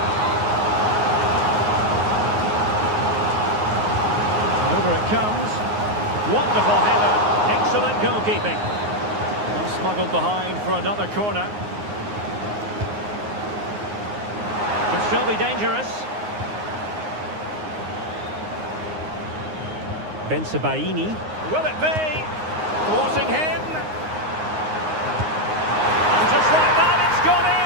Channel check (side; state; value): left; late; 9.6 ms